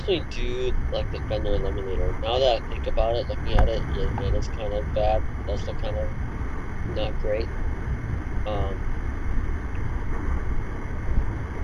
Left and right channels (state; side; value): identical; both; correlation 1.00